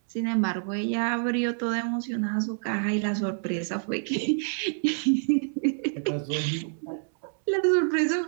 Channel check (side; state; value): left; silent; 60 dB below the other